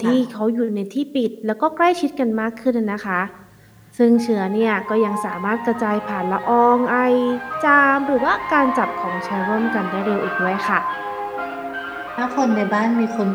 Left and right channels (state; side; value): identical; both; correlation 1.00